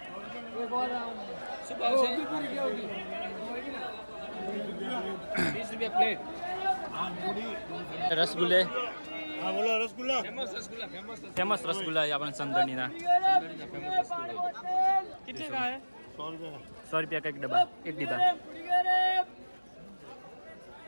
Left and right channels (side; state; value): both; inverted; correlation -1.00